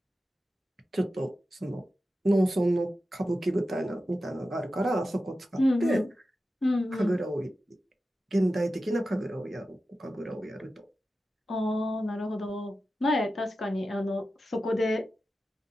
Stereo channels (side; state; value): both; normal; correlation 0.92